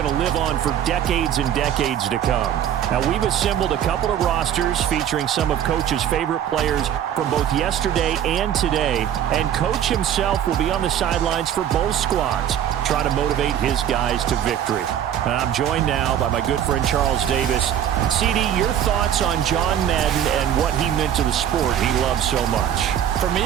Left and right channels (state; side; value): quieter; left; 10.0 dB